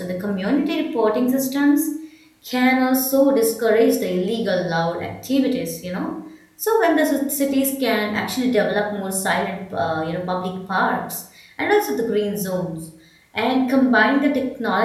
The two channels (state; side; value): identical; both; correlation 1.00